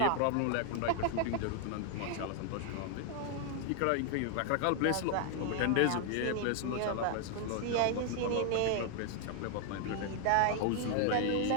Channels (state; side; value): different; both; correlation 0.00